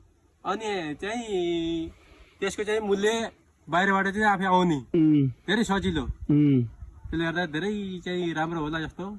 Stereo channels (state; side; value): identical; both; correlation 1.00